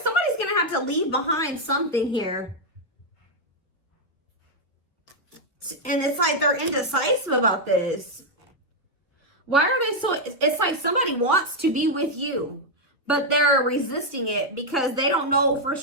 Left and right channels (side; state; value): both; normal; correlation 0.00